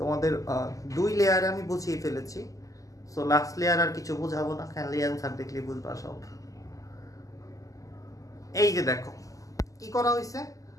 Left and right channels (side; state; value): right; late; 0.16 ms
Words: 2 লেয়ারে আমি বুঝিয়ে ফেলেছি। সো লাস্ট লেয়ার আর কিছু বুঝাবো না, খালি অ্যান্সার দেখলে বুঝবা সব। এই যে দেখো কি করা হয়েছে,